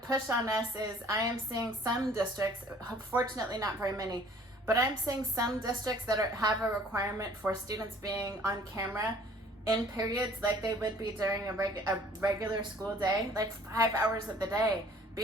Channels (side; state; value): both; normal; correlation 0.54